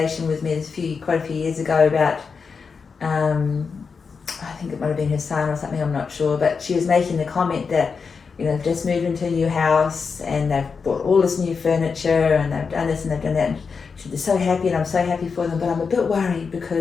with me quite a few years ago about, I think it might have been her son or something, I'm not sure, but she was making the comment that, you know, they've just moved into a new house and they've bought all this new furniture and they've done this and they've done that. And they're so happy and I'm so happy for them, but I'm a bit worried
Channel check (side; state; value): right; quieter; 5.4 dB